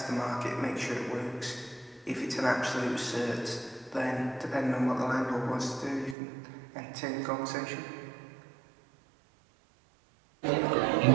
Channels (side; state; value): left; drops out; at 6.2 s